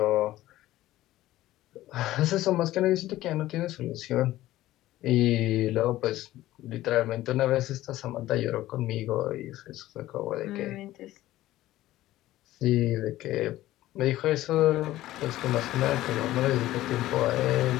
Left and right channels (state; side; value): quieter; right; 15.4 dB